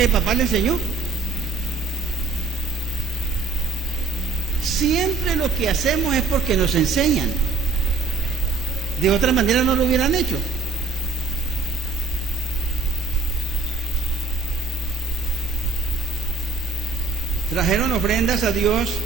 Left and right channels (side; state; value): left; quieter; 4.5 dB